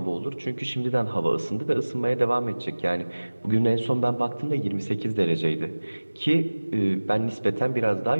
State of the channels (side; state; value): both; inverted; correlation -1.00